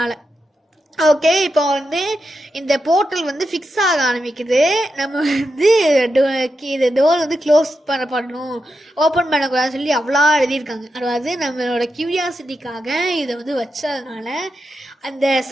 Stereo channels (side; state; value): both; normal; correlation 0.87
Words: ஓகே. இப்போ வந்து இந்த போர்ட்டல் வந்து ஃபிக்ஸ் ஆக ஆரம்பிக்குது. நம்ம வந்து இது டோர் வந்து க்ளோஸ் பண்ணணும், ஓப்பன் பண்ணக்கூடாதுன்னு சொல்லி அவ்வளோ எழுதியிருக்காங்க. அதாவது நம்மளோட க்யூரியாசிட்டிக்காக இதை வந்து வச்சதுனால